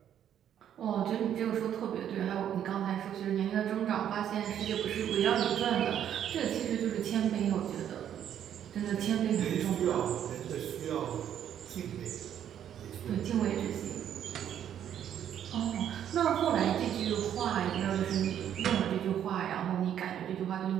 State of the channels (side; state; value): left; quieter; 9.9 dB